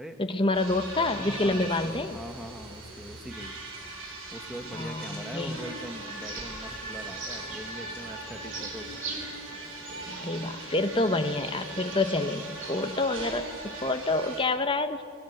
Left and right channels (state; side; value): normal; both; correlation 0.37